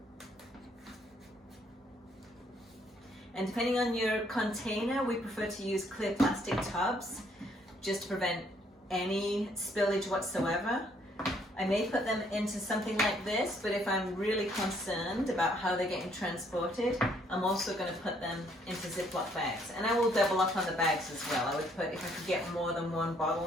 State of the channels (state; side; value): normal; both; correlation 0.67